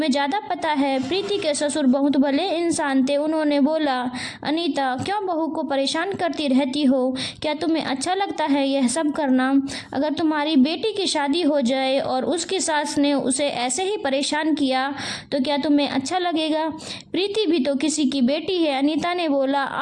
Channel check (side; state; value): both; identical; correlation 1.00